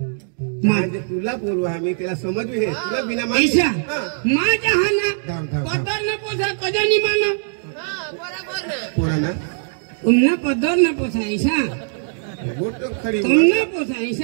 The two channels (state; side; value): silent; left; digital silence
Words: म्हणजे तुला बोलू आम्ही त्याला समजू हे तुला बिना ऐसा माहिती माझ्या हा ना धाव, धाव. पदर न पोसा कधी नाही मानो पोरांना तुमना पदर न पोसा ऐसा गोट खरी तुमना पोसा